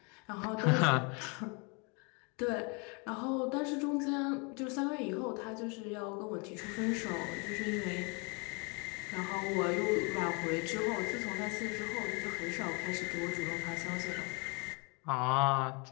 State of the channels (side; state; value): right; quieter; 32.3 dB